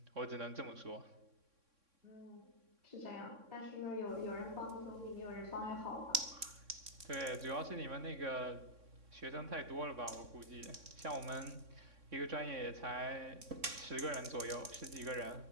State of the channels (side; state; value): left; late; 3.6 ms